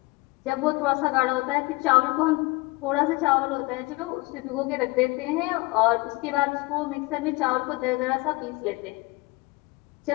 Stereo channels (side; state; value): right; quieter; 23.5 dB